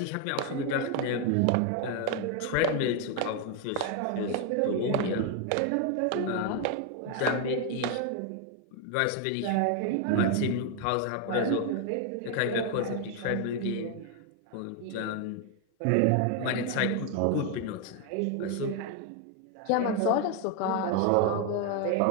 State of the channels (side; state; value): both; different; correlation 0.01